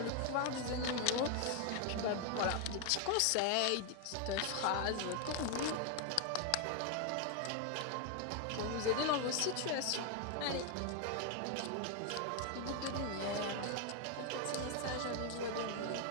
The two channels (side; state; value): both; different; correlation 0.01